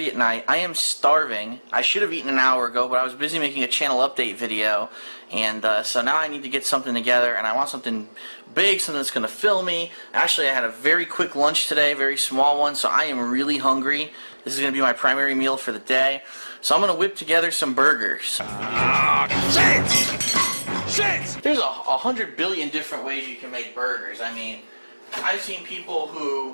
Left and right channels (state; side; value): inverted; both; correlation -1.00